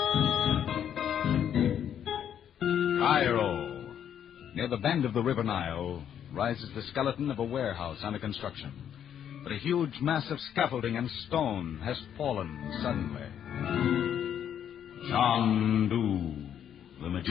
Cairo. Near the bend of the River Nile rises the skeleton of a warehouse under construction. But a huge mass of scaffolding and stone has fallen suddenly. Chandu, the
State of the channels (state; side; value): quieter; right; 9.3 dB